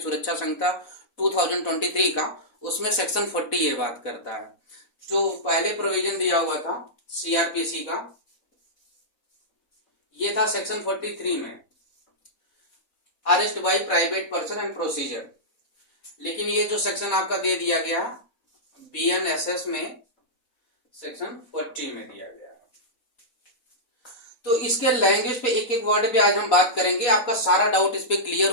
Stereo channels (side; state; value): right; late; 4.0 ms